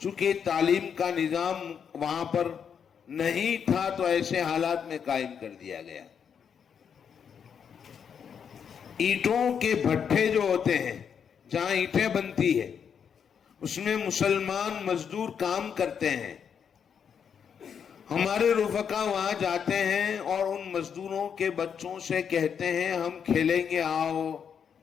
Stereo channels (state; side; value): quieter; right; 7.4 dB